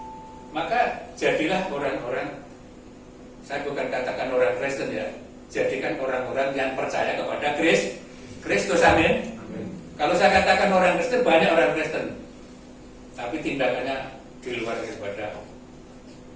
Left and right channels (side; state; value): both; identical; correlation 1.00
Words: Maka jadilah orang-orang, saya bukan katakan orang Kristen ya, jadikan orang-orang yang percaya kepada Kristus. Amin. Kalau saya katakan orang Kristen, banyak orang Kristen, tapi tindakannya di luar daripada